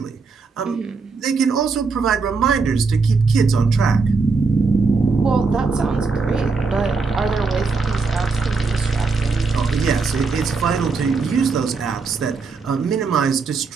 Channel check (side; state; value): left; quieter; 4.4 dB